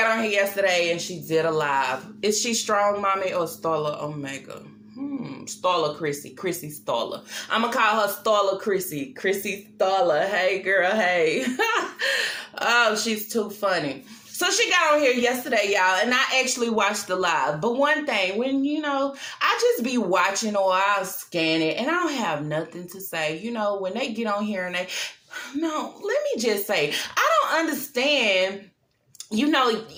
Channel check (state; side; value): identical; both; correlation 1.00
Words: on here yesterday and she did a live. Is she Strong Mommy or Starla Omega? Starla Chrissy Starla. I'm gonna call her Starla Chrissy Starla. Hey girl, hey. Oh, she's too funny. So she got on here yesterday, y'all, and I actually watched the live. But one thing, when, I just be watching or I'll scan it, and I don't have nothing to say. When they get on here and let me just say, I don't understand, and